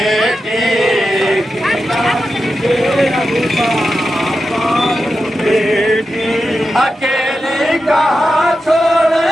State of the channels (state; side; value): normal; both; correlation 0.90